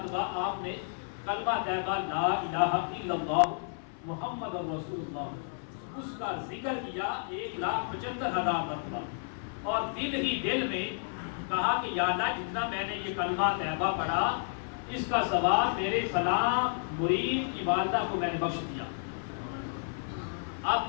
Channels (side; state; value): right; silent; 55 dB below the other